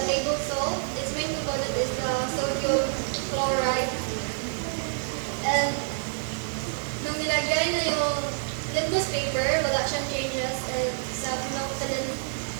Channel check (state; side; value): silent; left; digital silence